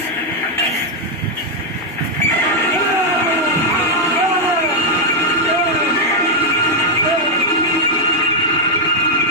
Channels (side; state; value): both; normal; correlation -0.01